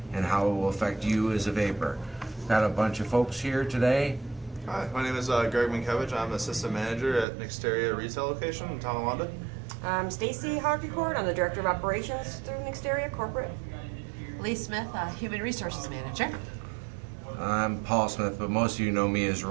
and how it will affect you as a vapor. Got a bunch of folks here today. Hi, my name is Greg Minkiewicz. I'm Assistant Manager at Nexteria Retail Location in Tonawanda. I'm Stacy Hoggecourt. I'm the Director of Operations through Nexteria Corporate. Lee Smith, Human Resources Manager. I'm Paul Smith, but most of you know me as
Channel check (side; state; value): left; drops out; at 7.2 s